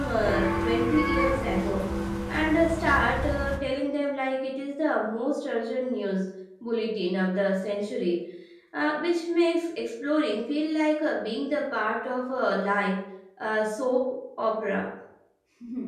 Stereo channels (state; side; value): identical; both; correlation 1.00